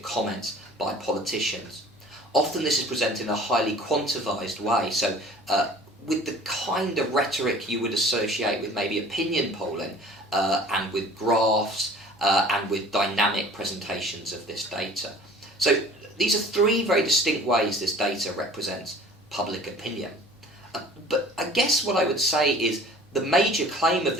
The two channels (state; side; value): normal; both; correlation 0.47